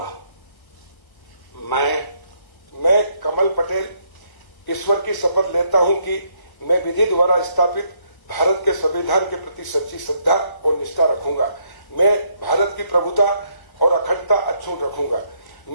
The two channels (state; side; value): late; right; 1.3 ms